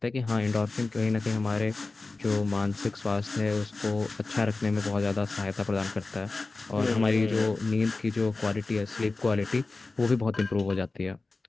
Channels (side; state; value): right; quieter; 3.5 dB